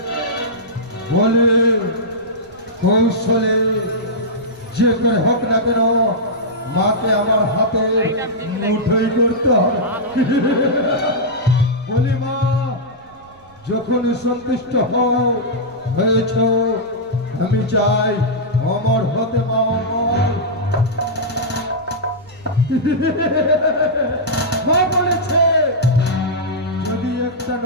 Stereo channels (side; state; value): right; noise; rumble, 28 dB below the sound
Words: বলে কৌশলে যে করে হোক না কেন মাকে আমার হাতে মুঠোই করতে হবে। বলি মা, যখন সন্তুষ্ট হয়েছ আমি চাই অমর হতে মা, অমর। মা বলেছে যদি একটা